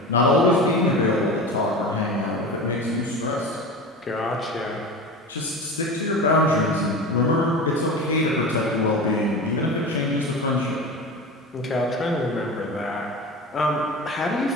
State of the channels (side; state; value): both; normal; correlation 0.30